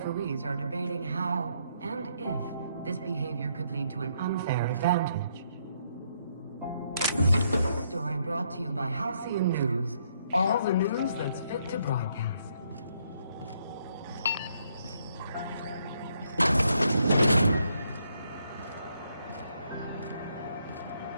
are debating how and if this behavior could lead to an unfair advantage. This story brought to you by Halcyon News. All the news that's fit to broadcast.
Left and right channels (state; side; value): inverted; both; correlation -0.74